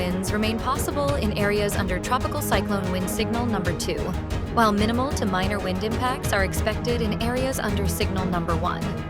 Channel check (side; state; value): both; identical; correlation 1.00